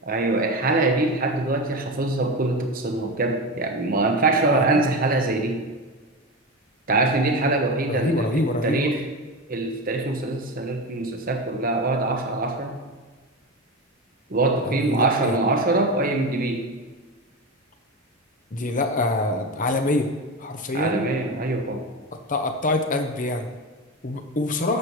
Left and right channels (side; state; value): both; normal; correlation 0.21